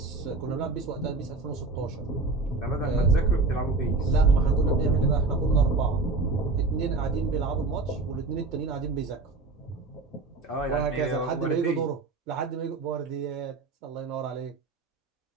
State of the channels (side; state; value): left; quieter; 3.6 dB